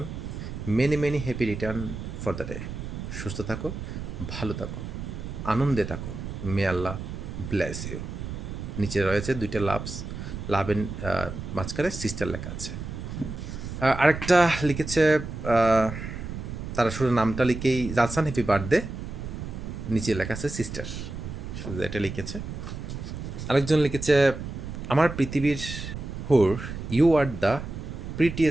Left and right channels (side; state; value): right; noise; rumble, 7 dB below the sound